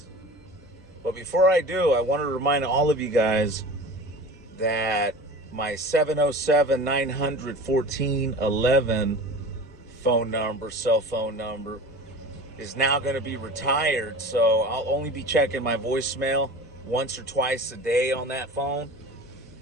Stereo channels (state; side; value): normal; both; correlation 0.37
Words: But before I do, I want to remind all of you guys that my 707-900-1411 cell phone number, is now going to be retired. So I'll only be checking my voicemail once or twice a day on that phone.